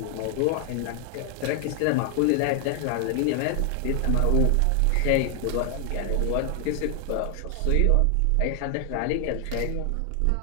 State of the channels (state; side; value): different; both; correlation 0.00